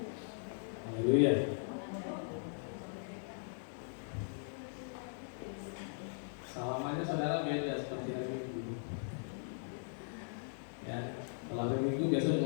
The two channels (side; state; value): right; silent; digital silence